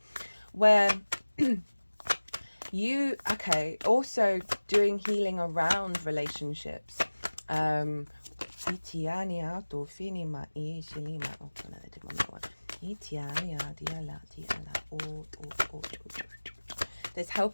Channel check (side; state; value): both; inverted; correlation -1.00